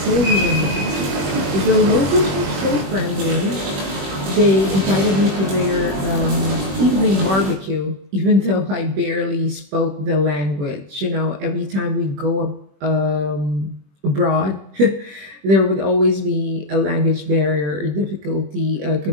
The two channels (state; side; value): late; left; 21 ms